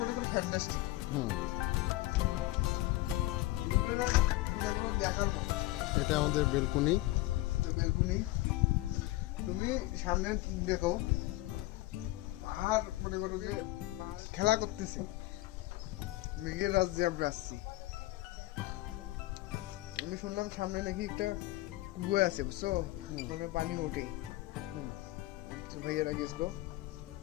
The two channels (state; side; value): quieter; right; 18.3 dB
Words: করি ফ্যান্টাস্টিক। দেখার মতো। এটা আমাদের বেলকুনি। বেলকুনি তুমি সামনে দেখো পাহাড় মনে করো যে খেলা করতেছে, মেঘের রাজ্যে আমরা আসছি। আমি শুনলাম সামনে নাকি একটা কুয়ো আছে, বুঝছো, ওখানে পানি ওঠে। ভাইয়ারা গেছিলো,